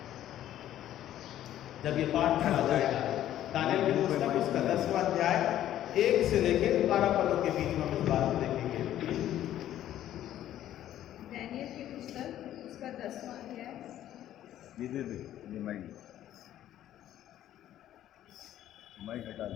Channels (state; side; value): quieter; right; 12.3 dB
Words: जब ये पाठ पढ़ा जाएगा, दानियल की पुस्तक उसका 10वां अध्याय 1 से लेकर 12 पदों के बीच में हम इस बात को देखेंगे। दानियल की पुस्तक उसका 10वां अध्याय। माइक हटा